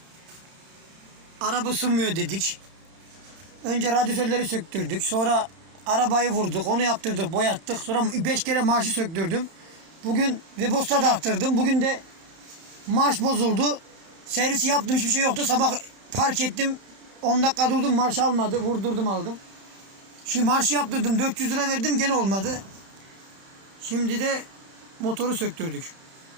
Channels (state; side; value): late; left; 31 ms